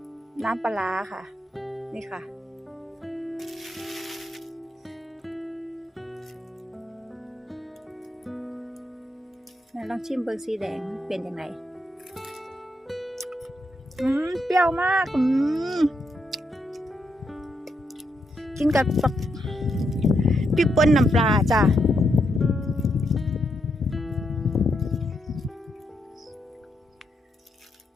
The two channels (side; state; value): both; normal; correlation 0.80